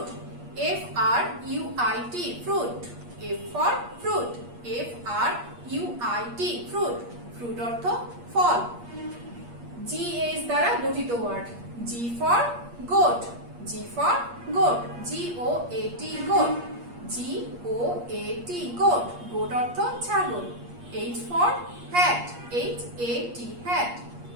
F R U I T, fruit. F for fruit, F R U I T, fruit. Fruit অর্থ ফল। G H দ্বারা গঠিত word. G for goat, G for goat, G O A T, goat. GOAT goat, goat অর্থ ছাগল। H for hat, HAT hat,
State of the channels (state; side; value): late; left; 8.5 ms